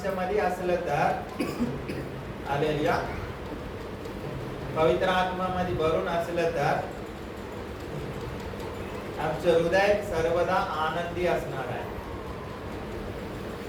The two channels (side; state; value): both; identical; correlation 1.00